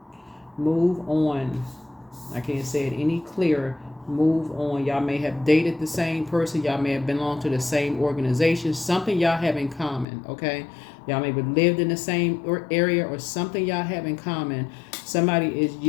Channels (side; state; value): right; drops out; at 10.1 s